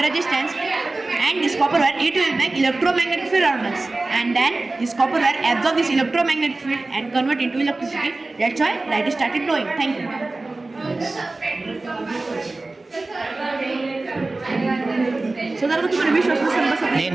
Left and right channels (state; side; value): quieter; left; 3.2 dB